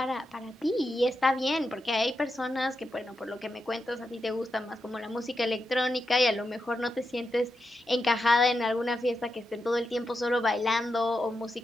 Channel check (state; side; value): normal; both; correlation 0.87